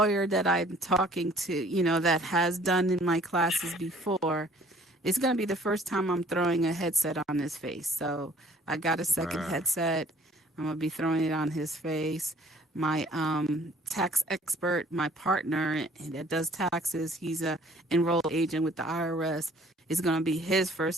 that I'm talking to, that has done in my classes before, it's going to be the first time I'm throwing a headset on his face. So I got a second Wow. headset. I'm going to be throwing it on his face. My tax expert, my partner that does taxes, he's a enrolled agent with the IRS. It's going to be his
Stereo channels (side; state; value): both; normal; correlation 0.56